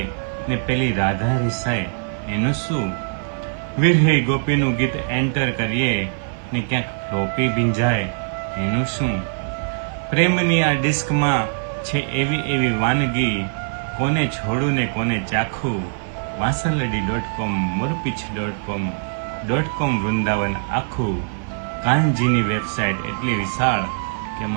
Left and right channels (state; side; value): silent; left; 57 dB below the other